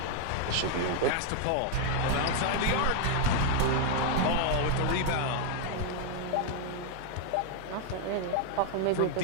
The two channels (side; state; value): both; different; correlation 0.00